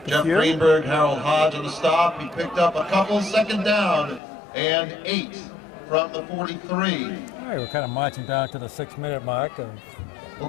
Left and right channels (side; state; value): right; drops out; at 4.2 s